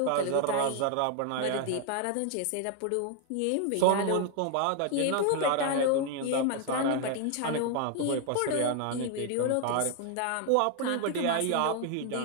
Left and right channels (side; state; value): both; different; correlation 0.00